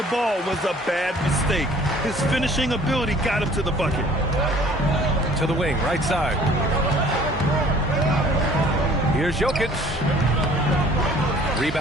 ball was a bad mistake. His finishing ability got him to the bucket. To the wing, right side. Here's Jokic.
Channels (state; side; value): normal; both; correlation 0.54